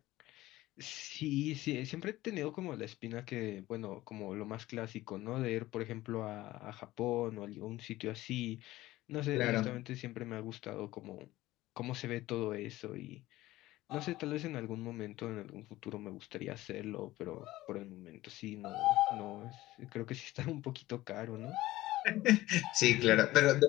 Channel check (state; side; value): quieter; right; 16.9 dB